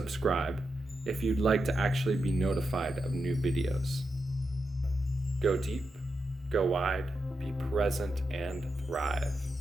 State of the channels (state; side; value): normal; both; correlation 0.87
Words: if you'd like to actually be notified of new videos. Go deep, go wide, be present, and thrive.